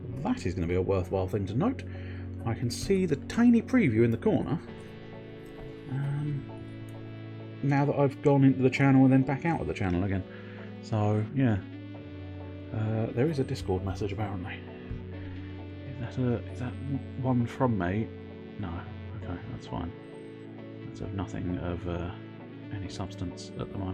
that is going to be a worthwhile thing to note. I can see the tiny preview in the corner. Now that I've gone into the channel and then back out of the channel again. So, yeah. There is a Discord message, apparently. Is that one from me? No. Okay, that's fine. That's of nothing of any substance at the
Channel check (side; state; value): both; identical; correlation 1.00